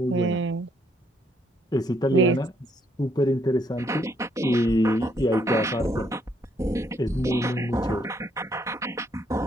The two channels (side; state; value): both; normal; correlation 0.71